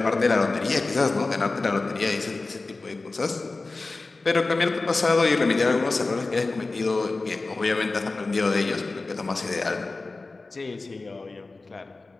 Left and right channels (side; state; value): right; quieter; 3.5 dB